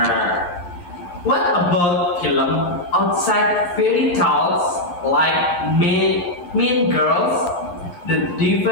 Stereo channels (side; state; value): right; late; 11 ms